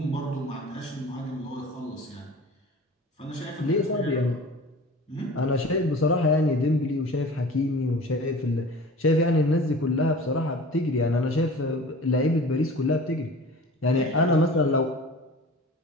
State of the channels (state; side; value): normal; both; correlation 0.40